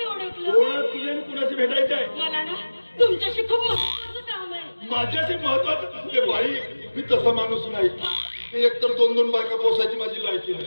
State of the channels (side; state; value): both; inverted; correlation -1.00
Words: ओळखलं. कोण आहात तुम्ही आणि कुणाशी भेटायचं आहे? मला ना तुमच्याशी खूप महत्वाचं काम आहे. माझ्याशी महत्वाचं? हे बाई, मी तसा माणूस नाही. एकतर दोन बायका पोसायची माझी लायकी